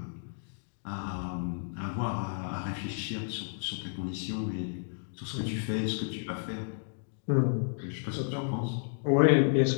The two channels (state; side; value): silent; right; digital silence